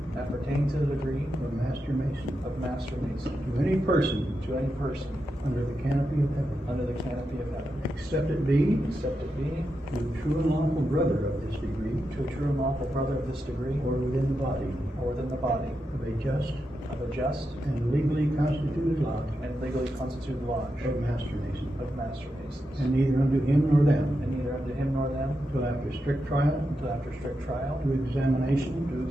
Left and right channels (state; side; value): normal; both; correlation 0.87